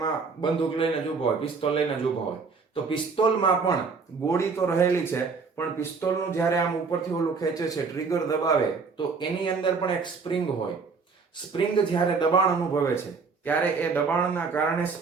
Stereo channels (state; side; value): quieter; left; 4.9 dB